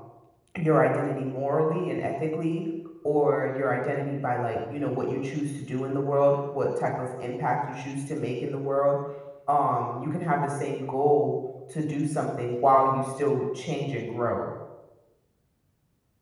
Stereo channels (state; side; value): identical; both; correlation 1.00